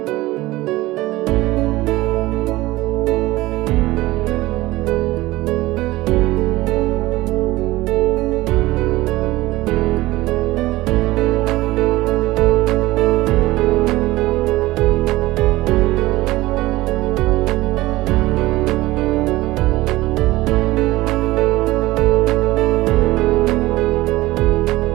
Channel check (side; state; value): left; quieter; 18.5 dB